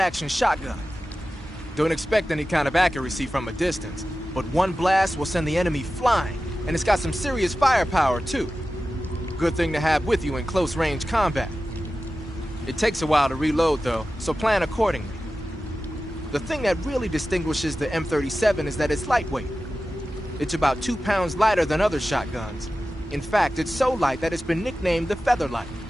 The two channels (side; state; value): both; normal; correlation 0.94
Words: shotgun. Don't expect any kind of accuracy from a distance, but one blast will send the enemy flying, and it's got some serious firepower, too. Good thing to have with you in close-range combat. It takes a while to reload, though, so plan accordingly. The thing that really distinguishes the M37 is that it's lightweight. It's about 2 pounds lighter than other shotguns. In fact, it's so light that it's been nicknamed the Featherlight.